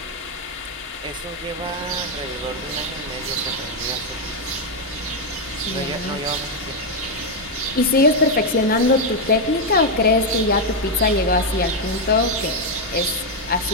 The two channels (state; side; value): normal; both; correlation 0.01